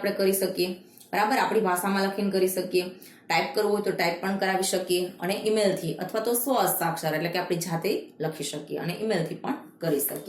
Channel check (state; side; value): identical; both; correlation 1.00